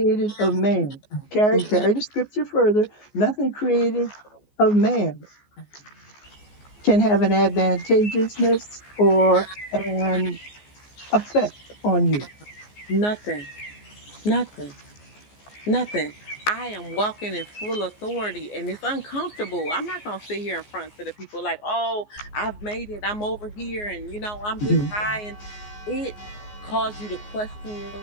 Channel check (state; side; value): late; right; 14 ms